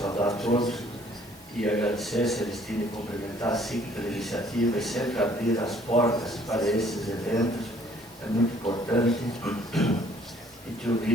a todos e agradecer, Celestino, e cumprimentar a SIC pela iniciativa e sempre abrir as portas para esses eventos, é muito importante. E te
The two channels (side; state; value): both; normal; correlation 0.59